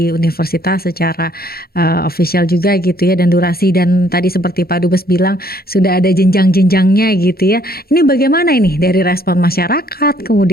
universitas secara official juga gitu ya, dan durasi, dan tadi seperti Pak Dubes bilang sudah ada jenjang-jenjangnya gitu ya. Ini bagaimana ini dari respon masyarakat,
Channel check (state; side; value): late; right; 0.44 ms